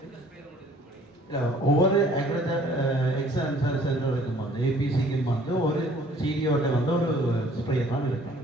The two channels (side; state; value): both; normal; correlation 0.56